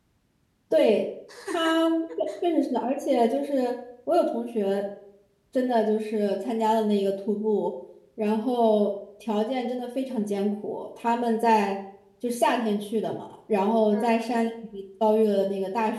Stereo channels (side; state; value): both; identical; correlation 1.00